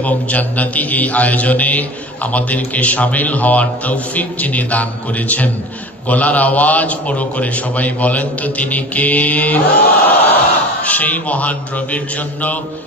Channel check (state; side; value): normal; both; correlation 0.37